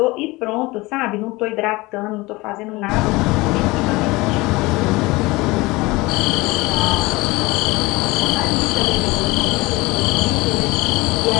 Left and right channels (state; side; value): quieter; right; 22.1 dB